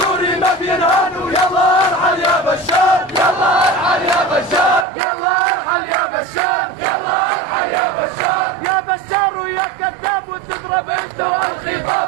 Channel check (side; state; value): left; drops out; at 4.9 s